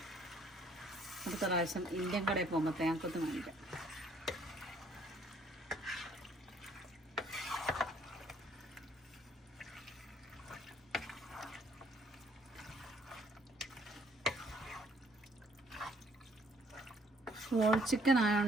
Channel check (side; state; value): both; normal; correlation 0.63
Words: അടുത്ത പ്രാവശ്യം ഇന്ത്യൻ കടയിൽ പോകുമ്പോൾ തേങ്ങാക്കൊത്ത് മേടിക്കാം. ഹോൾ ചിക്കൻ